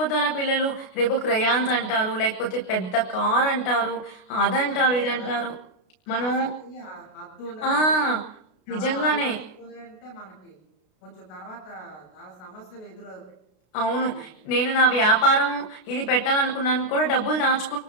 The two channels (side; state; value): right; late; 32 ms